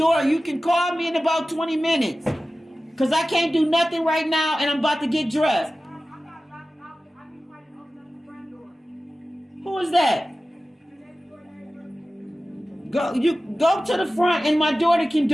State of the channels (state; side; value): normal; both; correlation 0.96